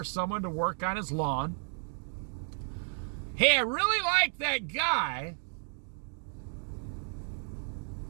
someone to work on his lawn. Hey, I really like that guy.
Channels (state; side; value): silent; left; 56 dB below the other